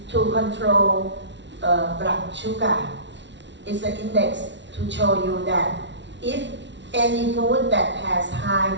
to control blood sugar it's an index to show you that if any food that has high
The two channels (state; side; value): late; left; 0.52 ms